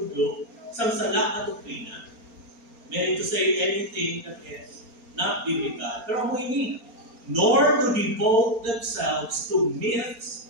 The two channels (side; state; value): left; late; 4.3 ms